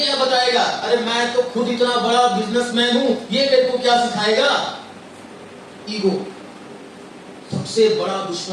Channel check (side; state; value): both; identical; correlation 1.00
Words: बताएगा? अरे मैं तो खुद इतना बड़ा बिजनेसमैन हूं, ये मेरे को क्या सिखाएगा? ईगो सबसे बड़ा